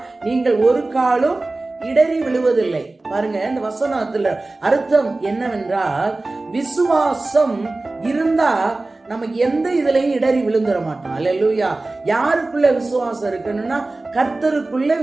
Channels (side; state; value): left; quieter; 3.1 dB